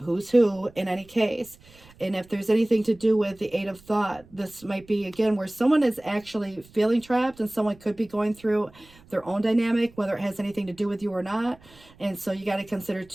who in any case. And if there's anything to do with the Eight of Thought, this might be, again, where someone is actually feeling trapped and someone could be going through their own dynamic, whether it has anything to do with you or not. And so you got to consider,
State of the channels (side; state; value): right; noise; rumble, 26 dB below the sound